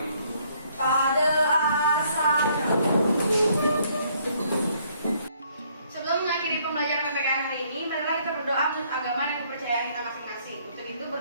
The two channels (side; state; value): both; inverted; correlation -0.66